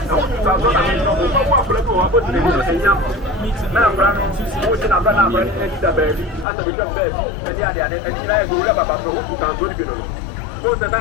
who are on walk let you up and young. Now, who's in a banana and the baby, and the become baby, and the other, and the other, whoever about those who are good. Who's the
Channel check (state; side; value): drops out; right; at 6.5 s